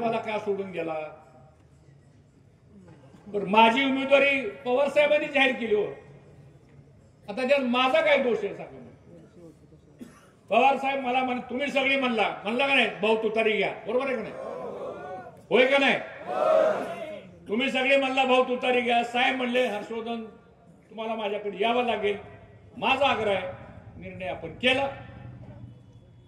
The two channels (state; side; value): identical; both; correlation 1.00